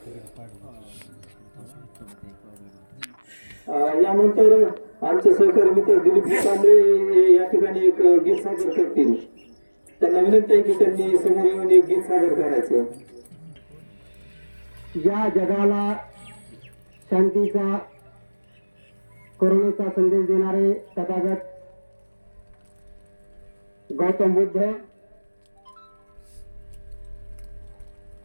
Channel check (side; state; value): both; inverted; correlation -1.00